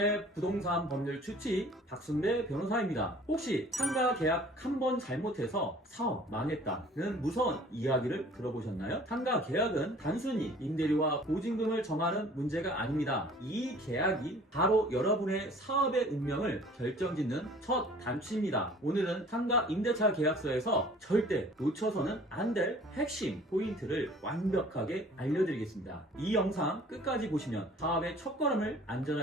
부동산 법률 추치 박순배 변호사입니다. 혹시 상가 계약 한 번 잘못해서 사업 망했다는 무서운 이야기를 들어보셨나요? 상가 계약은 단순히 임대료와 보증금을 정하는 문제가 아닙니다. 이 계약이 바로 여러분의 사업의 운명을 결정짓는 첫 단추입니다. 오늘은 상가 임대차 계약서에서 절대 놓쳐서는 안 될 핵심 포인트를 완벽하게 알려드리겠습니다. 이 영상 끝까지 보시면 사업의 첫걸음을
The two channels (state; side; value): normal; both; correlation 0.50